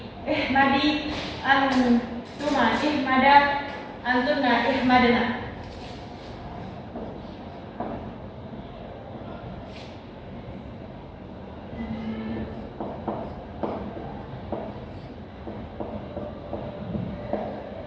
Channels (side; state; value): both; identical; correlation 1.00